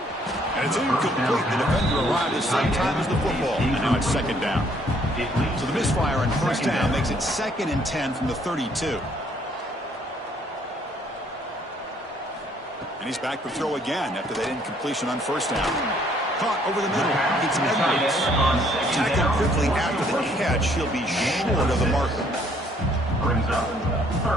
And it's incomplete. The defender arrived at the same time as the football. And now it's 2nd down. So the misfire on 1st down makes it 2nd and 10 from the 32. And he's back to throw again after that incompletion on 1st down. Caught over the middle. It's Edwards. Tackled quickly after the catch. He'll be short of the marker. Brings up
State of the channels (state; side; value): normal; both; correlation 0.64